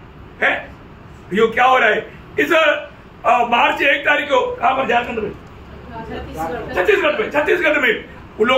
है ये क्या हो रहा है? इस मार्च 1 तारीख को कहां पर, झारखंड में, छत्तीसगढ़ में उन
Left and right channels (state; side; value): identical; both; correlation 1.00